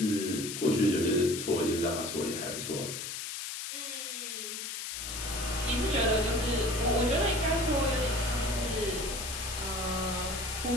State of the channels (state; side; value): noise; left; hiss, 6 dB below the sound